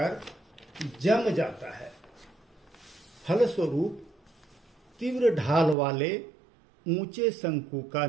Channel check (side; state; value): left; drops out; at 5.8 s